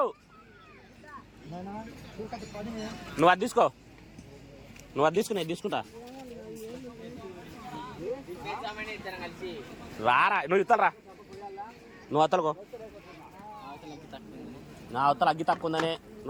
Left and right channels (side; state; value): both; identical; correlation 1.00